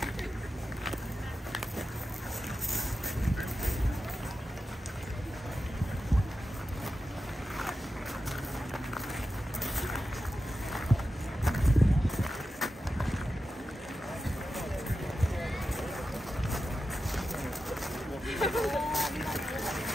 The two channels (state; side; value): normal; both; correlation 0.91